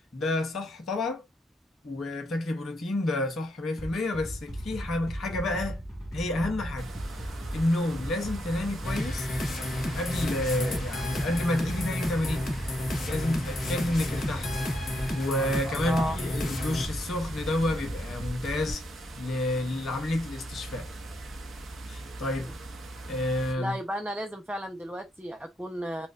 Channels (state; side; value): normal; both; correlation 0.78